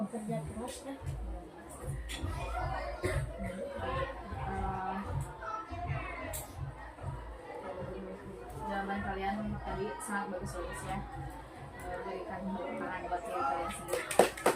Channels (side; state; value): both; identical; correlation 1.00